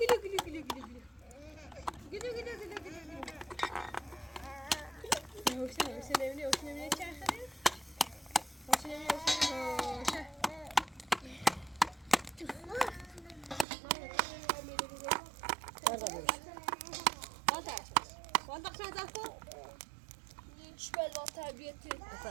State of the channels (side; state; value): left; drops out; at 13.7 s